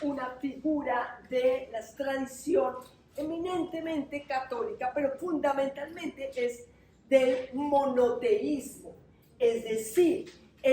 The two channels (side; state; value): both; identical; correlation 1.00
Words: una figura de la tradición eminentemente católica, pero fundamentalmente es del monoteísmo, es decir,